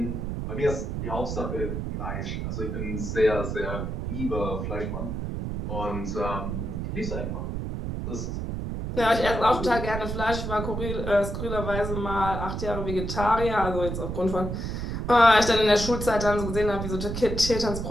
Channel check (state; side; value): noise; right; rumble, 4 dB below the sound